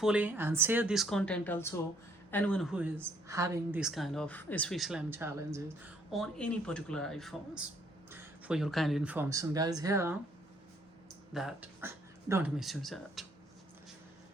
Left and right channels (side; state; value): both; normal; correlation 0.66